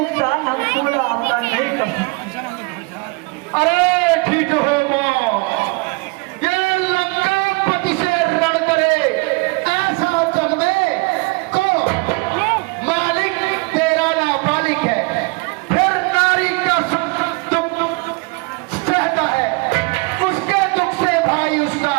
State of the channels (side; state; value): left; quieter; 28.8 dB